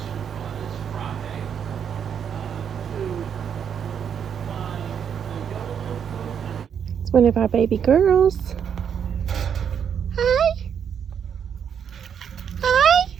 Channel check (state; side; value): quieter; left; 7.9 dB